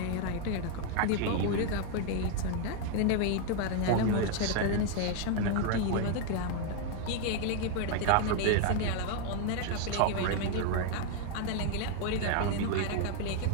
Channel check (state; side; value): different; both; correlation 0.01